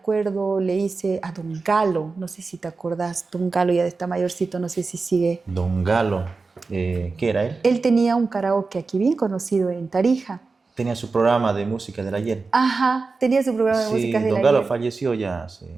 le hice a Don Galo, no sé si te acordás, Don Galo ya está mayorcito, no sé si sigue. Don Galo, ¿qué era él? Él tenía un karaoke aquí bien conocido en Tarija. Tenía su programa de música del ayer. Ajá, tenía su programa de músicas Sí, del Don Galo ayer. falleció ya hace,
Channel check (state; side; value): quieter; left; 4.1 dB